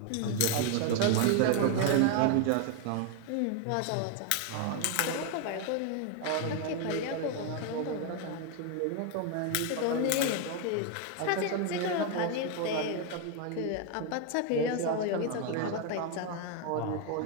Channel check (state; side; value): different; both; correlation 0.01